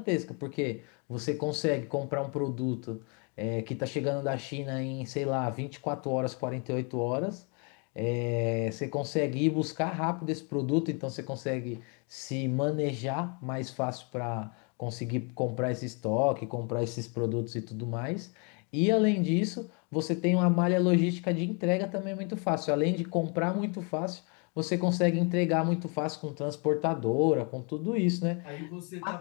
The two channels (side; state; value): right; quieter; 35.1 dB